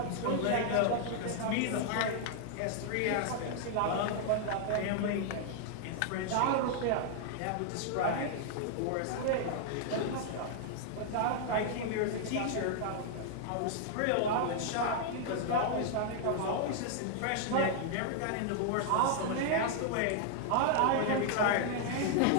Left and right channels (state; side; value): different; both; correlation 0.00